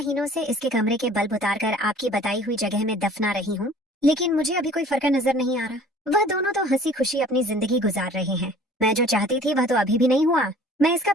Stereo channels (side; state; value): both; normal; correlation 0.50